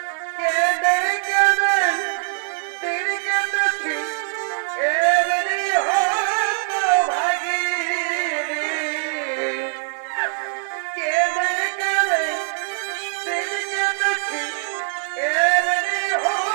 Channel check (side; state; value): left; silent; 64 dB below the other